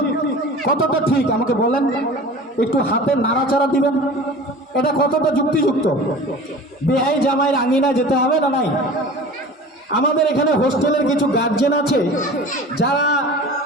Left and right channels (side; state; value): both; normal; correlation 0.39